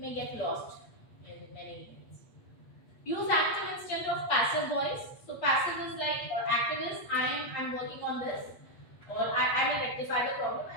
get lost in many emails. Use active instead of passive voice. So passive is like, or active is I'm working on this, or I will rectify the problem,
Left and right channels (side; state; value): right; late; 8.4 ms